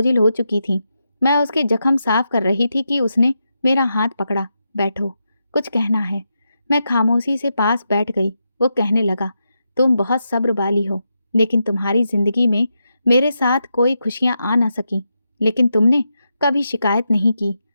हो चुकी थीं। मैं उसके जख्म साफ कर रही थी कि उसने मेरा हाथ पकड़ा। बैठो, कुछ कहना है। मैं खामोशी से पास बैठ गई। वो कहने लगा, तुम बहुत सब्र वाली हो, लेकिन तुम्हारी ज़िंदगी में मेरे साथ कोई खुशियाँ आ ना सकी, लेकिन तुमने कभी शिकायत नहीं की।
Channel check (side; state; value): both; inverted; correlation -0.86